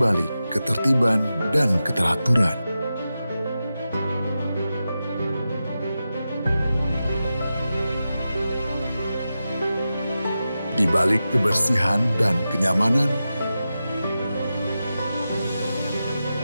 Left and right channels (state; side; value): inverted; both; correlation -0.91